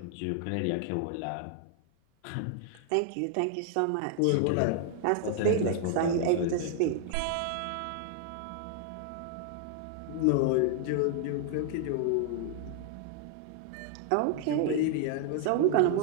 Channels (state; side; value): different; both; correlation 0.00